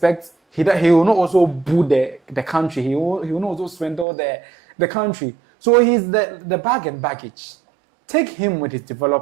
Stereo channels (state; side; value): drops out; left; at 4.0 s